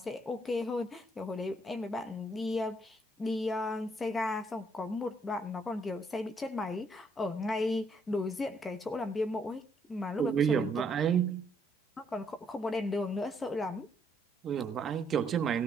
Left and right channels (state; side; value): normal; both; correlation 0.71